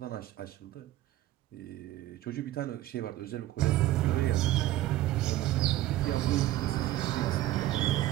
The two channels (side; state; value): left; quieter; 14.9 dB